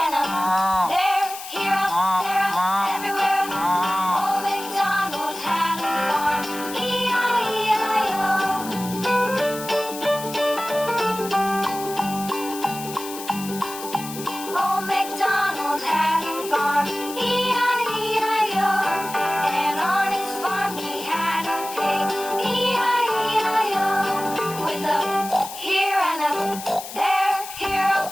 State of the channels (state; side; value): noise; left; hiss, 11 dB below the sound